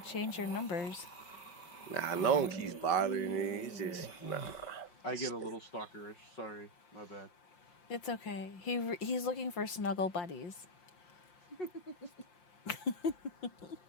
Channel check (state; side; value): late; right; 5.8 ms